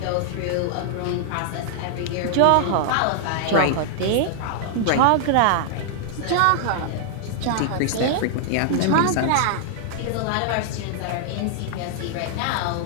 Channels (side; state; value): both; different; correlation -0.01